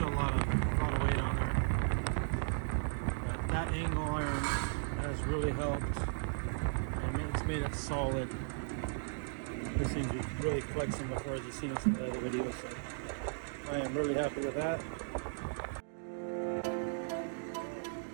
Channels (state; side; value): silent; left; digital silence